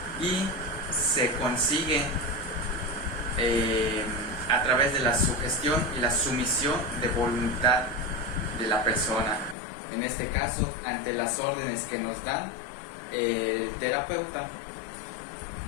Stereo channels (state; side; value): drops out; right; at 9.6 s